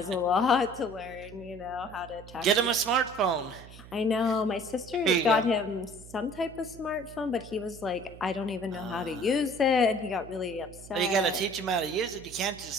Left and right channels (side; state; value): right; noise; hum, 18 dB below the sound